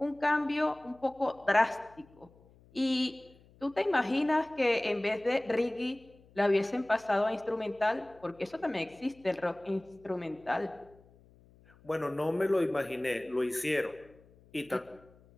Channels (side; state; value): left; noise; hum, 27 dB below the sound